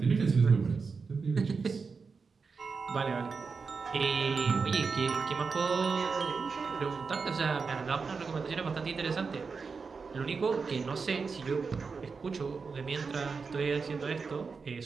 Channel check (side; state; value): left; quieter; 5.0 dB